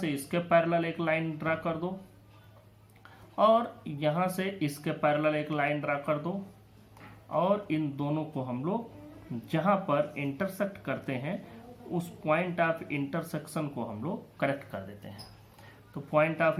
इसके पैरेलल एक लाइन ड्रा कर दो और यहाँ से इसके पैरेलल एक लाइन ड्रा कर दो, और इन दोनों को हम लोग जहाँ पर इंटरसेक्ट करते हैं उस पॉइंट ऑफ इंटरसेक्शन को हम लोग कनेक्ट कर देते हैं। तो पॉइंट ऑफ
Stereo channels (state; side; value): identical; both; correlation 1.00